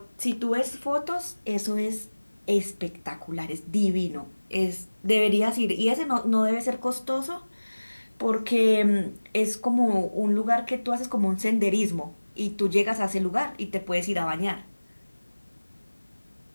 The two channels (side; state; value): both; inverted; correlation -1.00